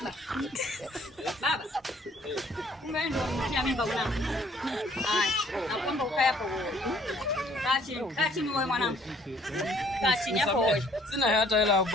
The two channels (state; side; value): normal; both; correlation 0.59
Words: Baba. Umeenda kumtia mimba mwanangu. Haya, naomba ukae hapo wewe. Kaa chini wewe mwanangu. Kaa chini hapo wewe. Sina hata hela ya